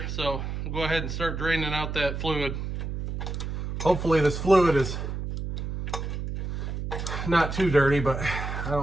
so we'll go ahead and start draining out that fluid. Hopefully this fluid is not too dirty, but I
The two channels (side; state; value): right; noise; hum, 4 dB below the sound